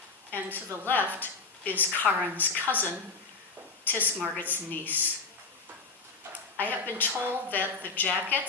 And to the left is Karen's cousin, Tisk Margit's niece. I have been told that the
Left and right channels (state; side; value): quieter; right; 4.4 dB